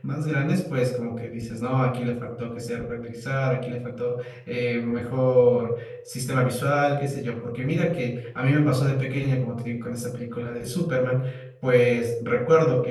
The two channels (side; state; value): both; identical; correlation 1.00